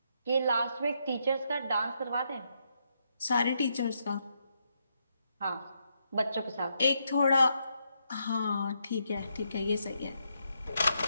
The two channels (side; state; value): both; inverted; correlation -0.79